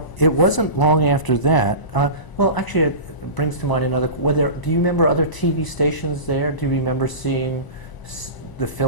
it wasn't long after that. Well, actually, it brings to mind another. Do you remember other TV stations there? Do you remember seeing the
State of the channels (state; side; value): late; right; 1.0 ms